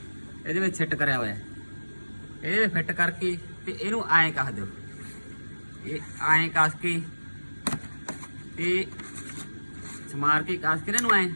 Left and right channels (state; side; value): inverted; both; correlation -1.00